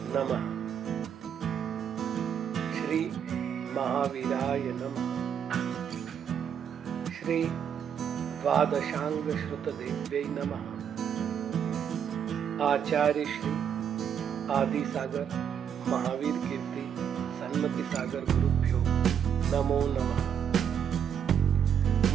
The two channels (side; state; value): left; quieter; 8.2 dB